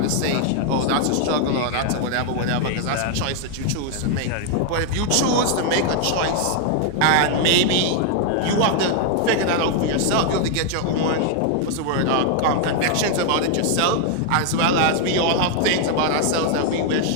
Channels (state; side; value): different; both; correlation 0.00